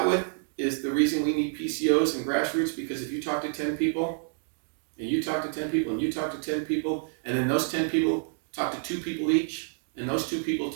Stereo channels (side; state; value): left; silent; digital silence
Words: with is the reason we need PCOs and grassroots, because if you talk to 10 people, and you talk to 10 people, and you talk to 10 people, and then those 10 people talk to 2 people each, and those 2 people